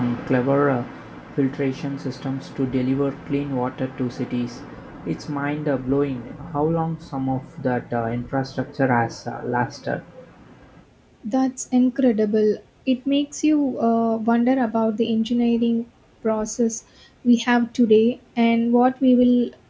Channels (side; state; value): both; identical; correlation 1.00